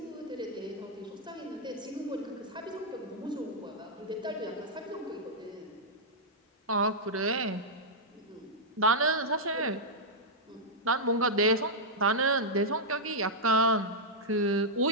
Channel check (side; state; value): both; normal; correlation -0.07